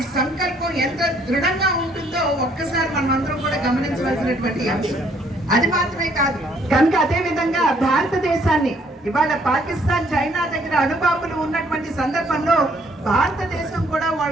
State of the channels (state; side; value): normal; both; correlation 0.65